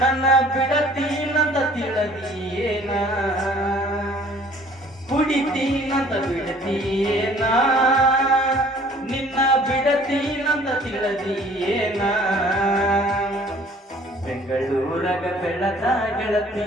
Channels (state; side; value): normal; both; correlation 0.54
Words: ನನ್ನ ಬಿಡತೀನಂತ ತಿಳಿದೀಯೇನ ಕುಡಿತೀನಂತ ಬಿಡತೀಯೇನ ನಿನ್ನ ಬಿಡತೀನಂತ ತಿಳಿದೀಯೇನ ಬೆಂಗಳೂರಗ ಬೆಳದ